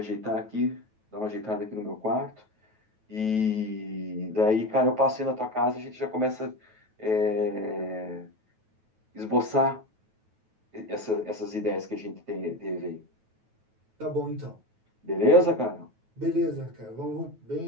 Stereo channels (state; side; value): late; left; 9.2 ms